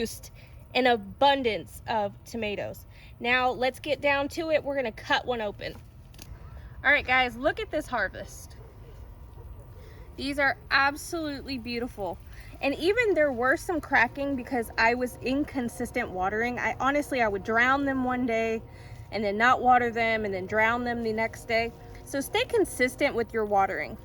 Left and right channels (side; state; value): both; identical; correlation 1.00